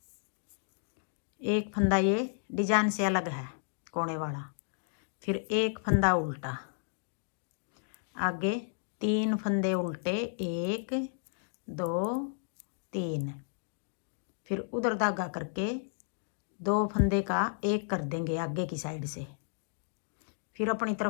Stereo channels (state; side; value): silent; right; digital silence